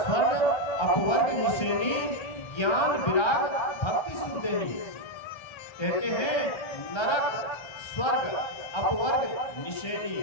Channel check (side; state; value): right; late; 1.3 ms